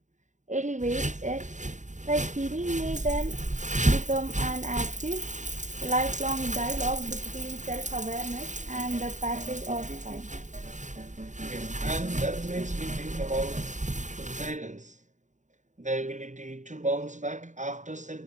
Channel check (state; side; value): late; left; 0.36 ms